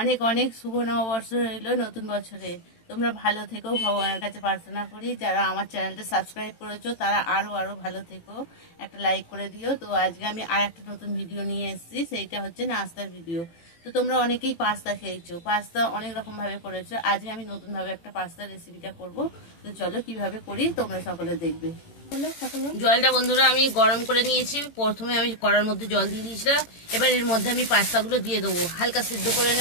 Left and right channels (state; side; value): late; right; 18 ms